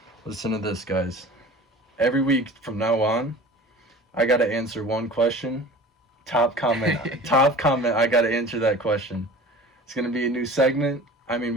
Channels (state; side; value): normal; both; correlation 0.41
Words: listen to this, guys. Every week from now on, I gotta answer one question. Top comment, I gotta answer that question. It's gonna be a new segment. I mean,